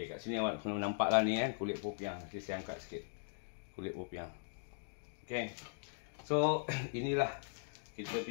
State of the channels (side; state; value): right; silent; digital silence